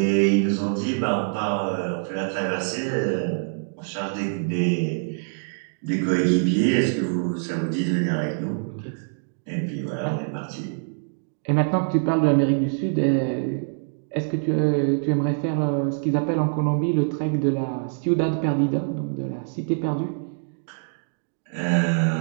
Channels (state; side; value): silent; left; digital silence